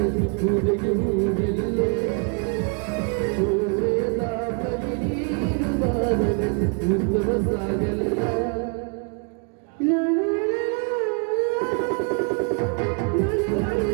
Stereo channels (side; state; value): left; quieter; 38.0 dB